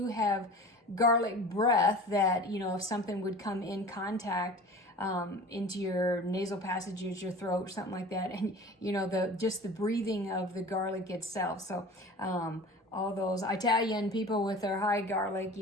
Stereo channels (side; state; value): both; normal; correlation 0.39